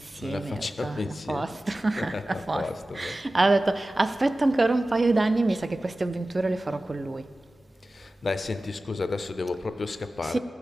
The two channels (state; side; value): normal; both; correlation 0.96